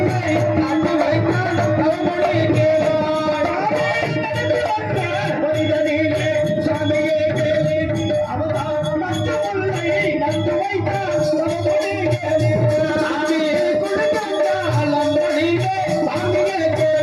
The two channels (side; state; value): both; identical; correlation 1.00